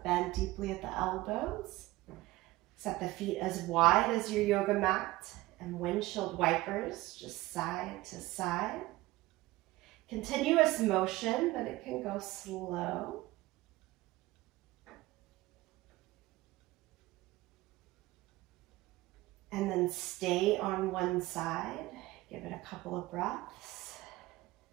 bend deeply at the elbows. Set the feet as wide as your yoga mat, and windshield wipers, just side to side. Continuous motion, but it can go slow. And then stay on one side. Give it a couple of breaths.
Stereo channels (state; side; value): quieter; left; 18.9 dB